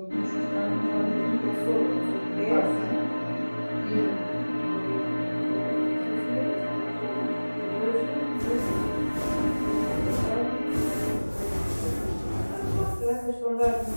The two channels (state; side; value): inverted; both; correlation -1.00